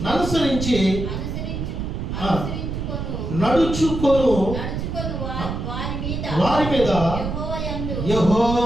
అనుసరించి నడుచుకొను వారి మీద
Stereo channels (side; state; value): right; noise; rumble, 4 dB below the sound